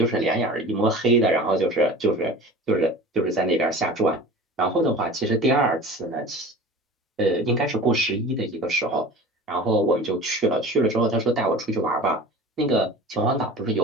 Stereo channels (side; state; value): both; normal; correlation 0.38